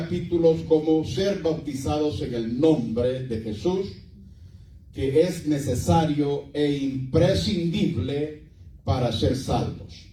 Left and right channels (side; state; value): both; identical; correlation 1.00